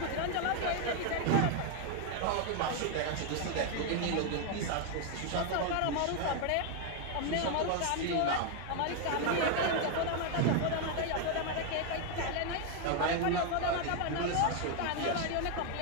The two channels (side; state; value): both; different; correlation 0.01